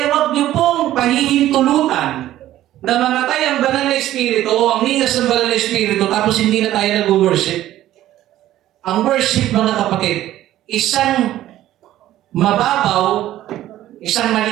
wag niyo pong pahihintulutan na mamatay ang banal na Espiritu o ang ningas ng banal na Espiritu tapos hindi na tayo nag-worship. Ang worship, mga kapatid, isang mababaw, isang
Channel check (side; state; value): left; quieter; 13.7 dB